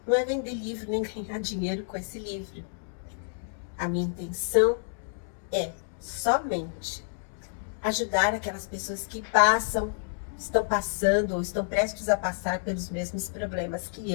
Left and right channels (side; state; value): right; silent; digital silence